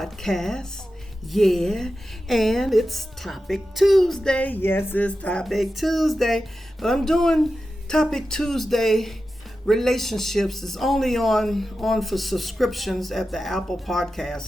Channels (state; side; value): normal; both; correlation 0.92